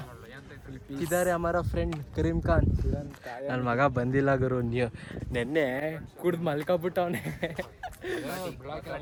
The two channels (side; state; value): both; identical; correlation 1.00